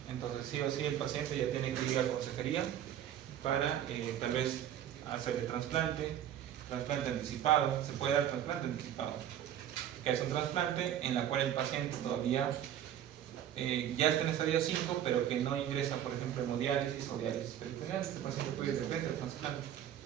Entonces sí o sí el paciente ya tiene que ir a consejería para tal vez hacerle trasplante anticipado. Se puede dar trasplante anticipado, que es un trasplante en la cual el paciente todavía ya está en estadio 5, pero que no ingresa, por ejemplo, hemodiálisis o diálisis peritoneal. Este paciente puede ir de frente al trasplante.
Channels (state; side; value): quieter; left; 10.7 dB